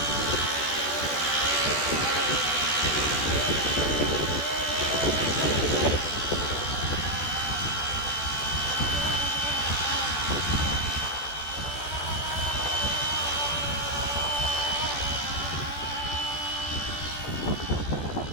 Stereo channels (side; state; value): right; late; 14 ms